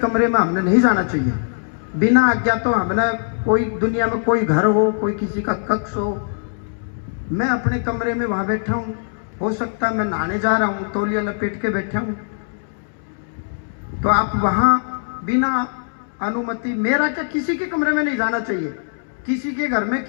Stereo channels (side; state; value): right; silent; 65 dB below the other